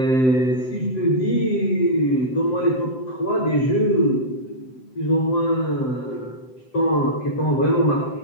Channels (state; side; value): late; right; 7.8 ms